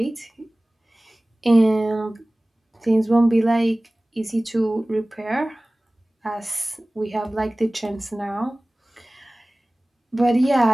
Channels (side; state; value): both; normal; correlation 0.98